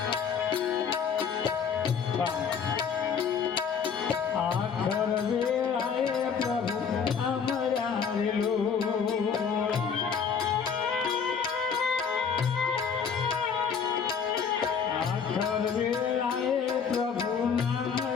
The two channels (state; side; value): quieter; right; 6.5 dB